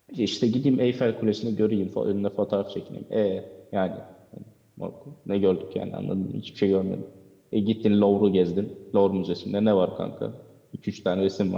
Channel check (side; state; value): both; identical; correlation 1.00